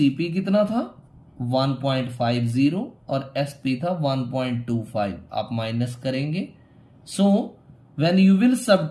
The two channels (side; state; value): both; identical; correlation 1.00